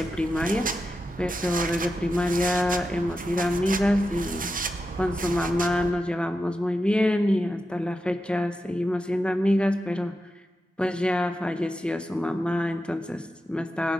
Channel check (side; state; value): both; normal; correlation 0.89